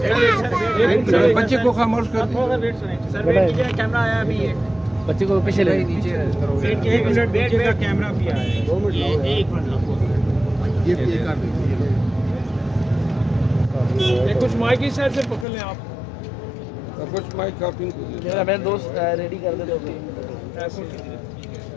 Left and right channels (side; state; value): right; drops out; at 15.5 s